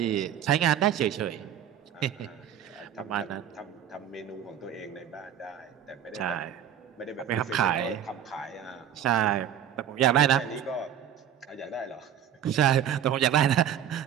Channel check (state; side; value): quieter; left; 9.5 dB